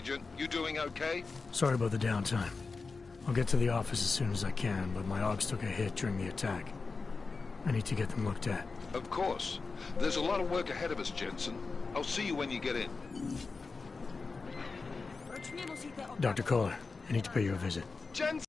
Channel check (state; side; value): quieter; right; 4.3 dB